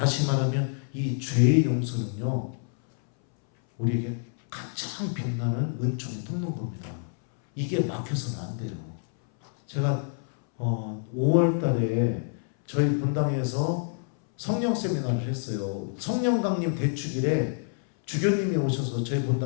말하면 이 죄의 용서는요, 우리에게 가장 빛나는 은총의 통로인 겁니다. 이게 막혀서는 안 돼요. 제가 5월 달에 저희 본당에서 성령 세미나를 했어요. 성령 강림 대축일에 주교님이 오셔서 저희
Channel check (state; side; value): silent; right; 60 dB below the other